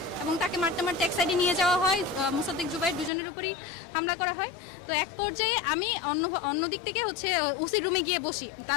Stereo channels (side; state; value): right; drops out; at 3.1 s